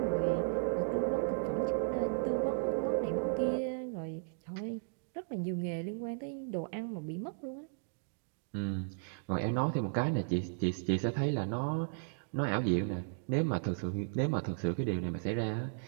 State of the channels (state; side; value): silent; left; digital silence